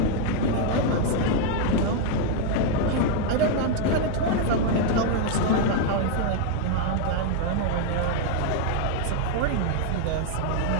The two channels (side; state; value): both; different; correlation 0.00